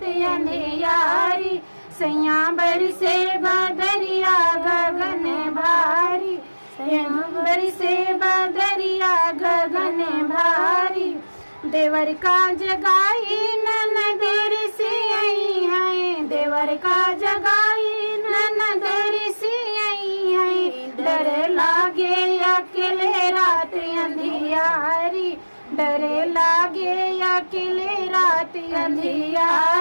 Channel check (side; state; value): both; inverted; correlation -1.00